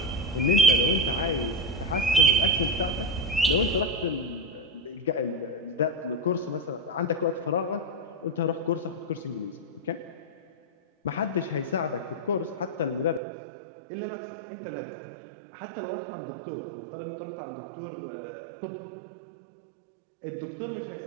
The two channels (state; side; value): drops out; left; at 13.2 s